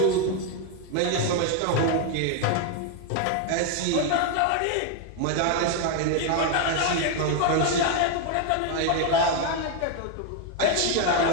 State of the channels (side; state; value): both; different; correlation 0.01